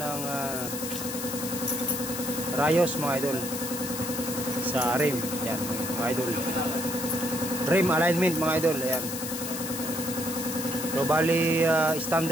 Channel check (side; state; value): left; noise; hiss, 6 dB below the sound